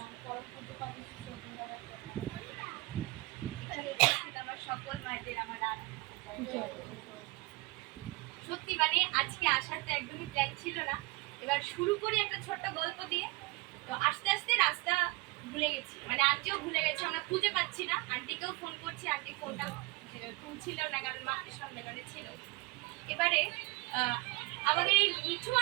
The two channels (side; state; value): left; quieter; 24.0 dB